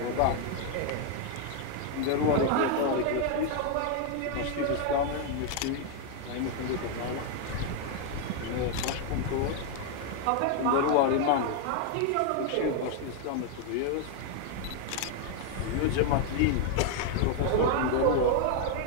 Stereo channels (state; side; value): different; both; correlation 0.00